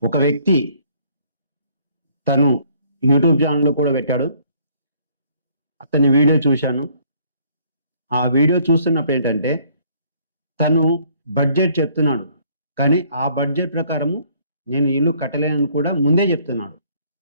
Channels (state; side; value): inverted; both; correlation -0.63